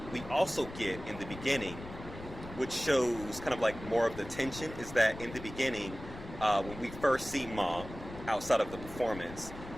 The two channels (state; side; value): noise; left; rumble, 13 dB below the sound